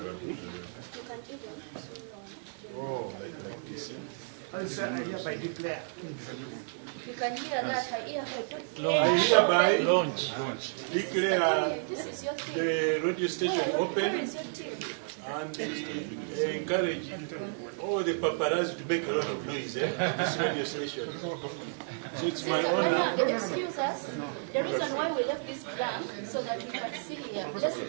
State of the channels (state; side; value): silent; left; 57 dB below the other